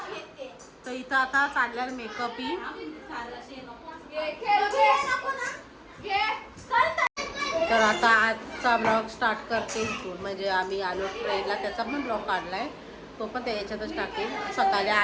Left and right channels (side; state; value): both; identical; correlation 1.00